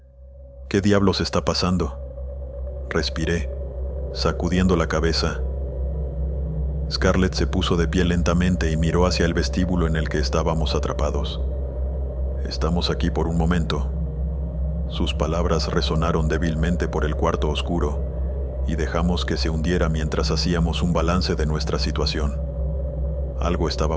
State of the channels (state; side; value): identical; both; correlation 1.00